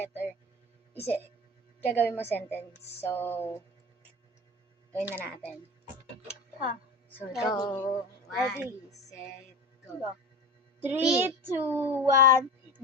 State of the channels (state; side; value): normal; both; correlation 0.30